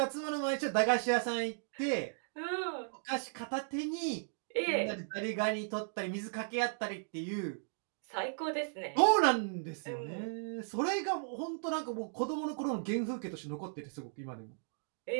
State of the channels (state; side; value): silent; left; digital silence